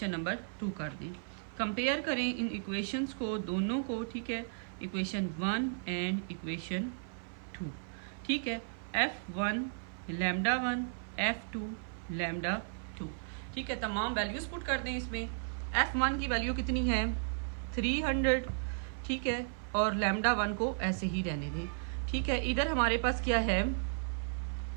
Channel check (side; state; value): left; silent; 55 dB below the other